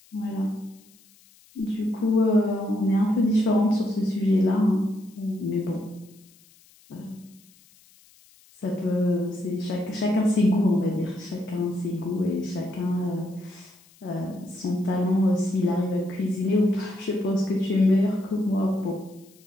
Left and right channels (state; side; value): noise; left; hiss, 28 dB below the sound